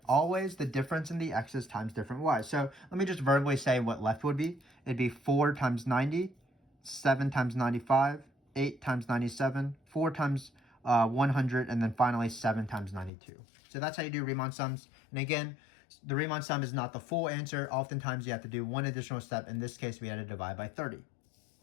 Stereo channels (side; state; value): right; drops out; at 13.1 s